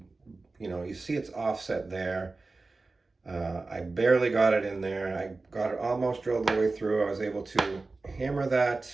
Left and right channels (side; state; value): left; quieter; 3.6 dB